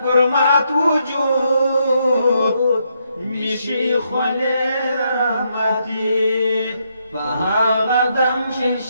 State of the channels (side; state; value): both; inverted; correlation -0.77